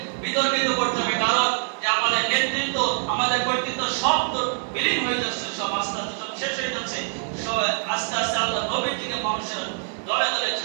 বিতর্কিত করতে হবে। কারণ যে আমাদের নেতৃত্ব, আমাদের কর্তৃত্ব সব তো বিলীন হয়ে যাচ্ছে, সব আস্তে আস্তে সব শেষ হয়ে যাচ্ছে, সব আস্তে আস্তে আল্লাহ নবীর দিকে মানুষের দলে দলে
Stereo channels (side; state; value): left; silent; digital silence